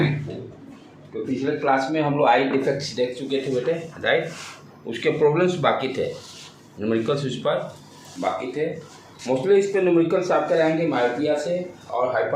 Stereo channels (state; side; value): identical; both; correlation 1.00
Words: पिछले क्लास में हम लोग आई डिफेक्ट्स देख चुके थे बेटे, राइट। उसके प्रॉब्लम्स बाकी थे, न्यूमेरिकल्स उस पर बाकी थे। मोस्टली इस पर न्यूमेरिकल्स आपके रहेंगे मायोपिया से और